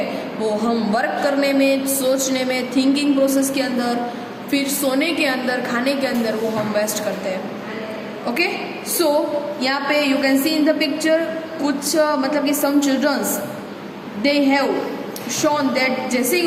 वो हम वर्क करने में, सोचने में, थिंकिंग प्रोसेस के अंदर, फिर सोने के अंदर, खाने के अंदर वो हम वेस्ट करते हैं। ओके, सो यहाँ पे you can see in the picture कुछ मतलब कि some childrens they have shown that जैसे ही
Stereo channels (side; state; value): both; identical; correlation 1.00